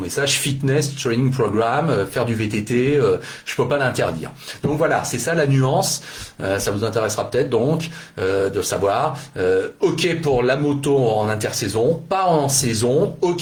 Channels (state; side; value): identical; both; correlation 1.00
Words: Fitness Training Program, faire du VTT, je peux pas l'interdire. Donc voilà, c'est ça la nuance. Ça vous intéressera peut-être donc de savoir. OK pour la moto en intersaison, pas en saison.